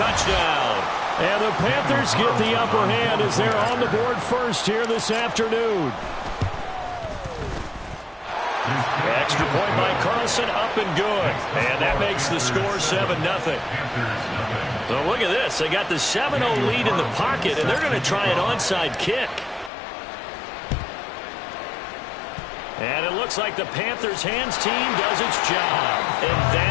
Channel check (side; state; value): right; drops out; at 19.7 s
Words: And the Panthers get the upper hand as they're on the board first here this afternoon. Extra point by Carlson, up and good. And that makes the score 7-0. So look at this. They got the 7-0 lead in the pocket, and they're going to try an onside kick. And it looks like the Panthers' hands team does its job. And